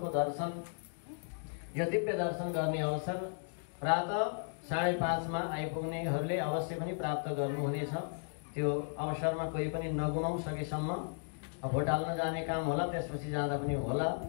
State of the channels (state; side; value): silent; right; digital silence